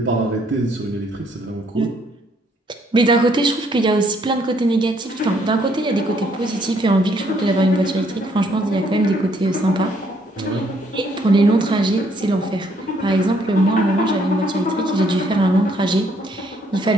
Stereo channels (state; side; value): normal; both; correlation 0.68